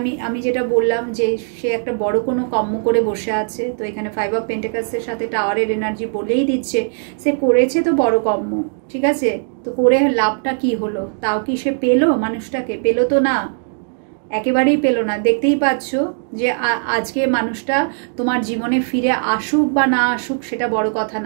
আমি যেটা বললাম যে সে একটা বড় কোনো কর্ম করে বসে আছে, তো এখানে 5 অফ পেন্টিকলসের সাথে টাওয়ারের এনার্জি বলেই দিচ্ছে সে করেছে তো বড় কর্ম। ঠিক আছে? তো করে লাভটা কি হলো? তাও কি সে পেলো? মানুষটাকে পেলো তো না, একেবারেই পেলো না। দেখতেই পাচ্ছ যে আজকে মানুষটা তোমার জীবনে ফিরে আসুক বা না আসুক সেটা বড় কথা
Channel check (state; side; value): silent; left; digital silence